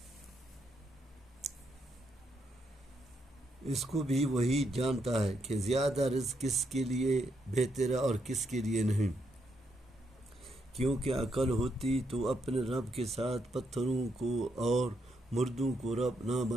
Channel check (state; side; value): normal; both; correlation 0.78